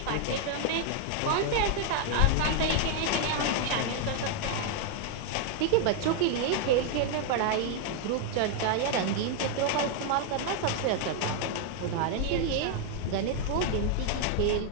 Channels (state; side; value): different; both; correlation 0.00